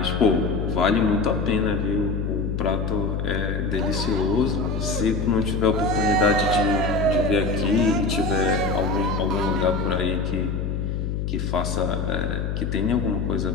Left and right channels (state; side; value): noise; left; hum, 2 dB below the sound